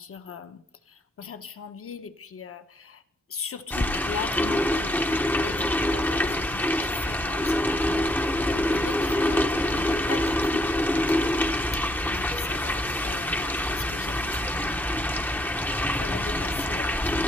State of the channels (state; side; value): normal; both; correlation 0.73